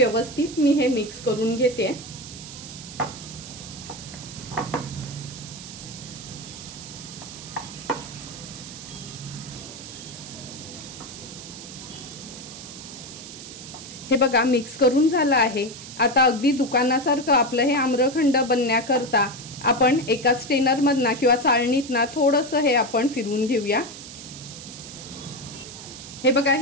मी हे मिक्स करून घेते। हे बघा मिक्स करून झालं आहे। आता अगदी दुकानासारखं आपलं हे आम्रखंड बनण्याकरता आपण एका स्टेनर मधना किंवा चाळणीतना थोडंसं हे आपण फिरवून घेऊया। हे बघा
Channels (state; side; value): noise; right; hiss, 13 dB below the sound